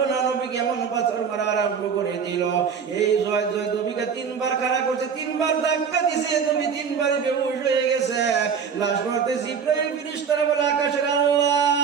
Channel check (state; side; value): quieter; left; 6.6 dB